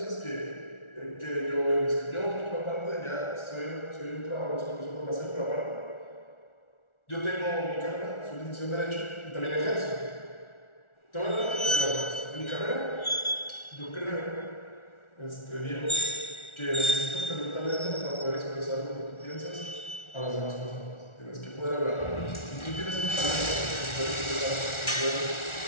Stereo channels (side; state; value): right; late; 1.4 ms